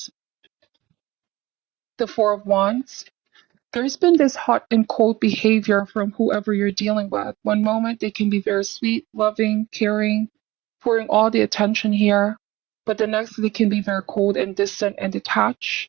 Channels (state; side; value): quieter; left; 18.5 dB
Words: the Four of Wands. There's been this hot and cold behavior from whoever you're dealing with. One moment, they can be very sweet, loving, caring, pouring all the attention here, but the next, they can be very cold and distant and detached.